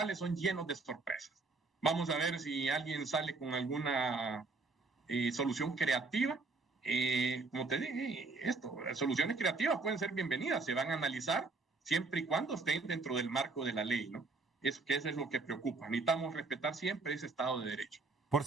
son llenos de sorpresas. Vamos a ver si alguien sale con alguna solución creativa. Como te dije, las soluciones creativas pueden ser bienvenidas, se van a analizar siempre y cuando estén dentro del marco de la ley, ¿no? Eso es lo que preocupa. Necesitamos respetar siempre ese Estado de Derecho. Por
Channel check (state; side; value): quieter; left; 3.8 dB